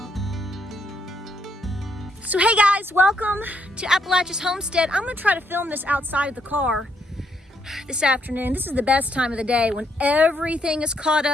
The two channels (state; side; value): normal; both; correlation 0.74